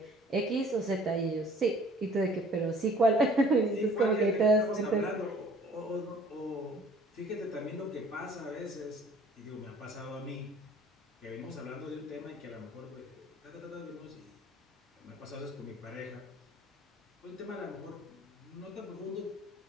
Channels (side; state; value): both; normal; correlation 0.54